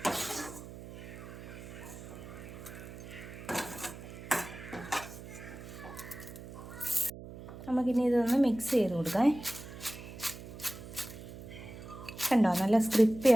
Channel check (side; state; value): right; noise; hum, 13 dB below the sound